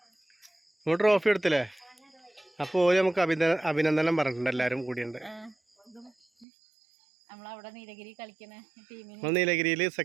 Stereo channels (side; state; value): left; drops out; at 6.5 s